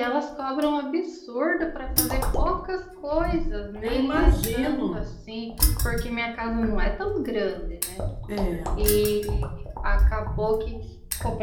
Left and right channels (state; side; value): identical; both; correlation 1.00